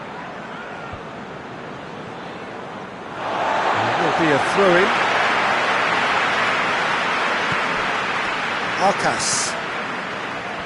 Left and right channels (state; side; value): identical; both; correlation 1.00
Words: Be a throw-in. Arcas.